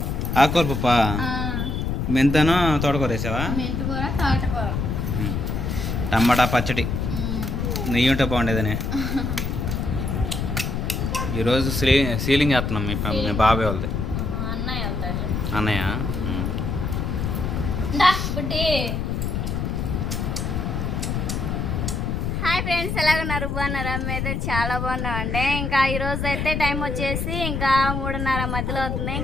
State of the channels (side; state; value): left; noise; rumble, 1 dB below the sound